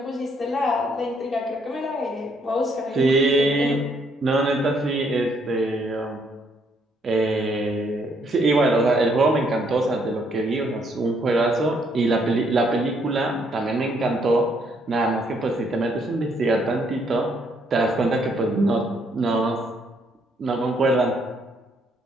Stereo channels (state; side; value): normal; both; correlation 0.70